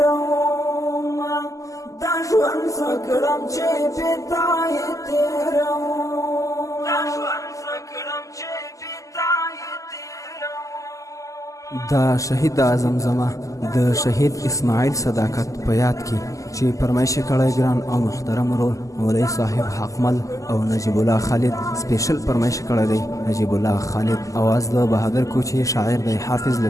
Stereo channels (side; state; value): right; late; 0.16 ms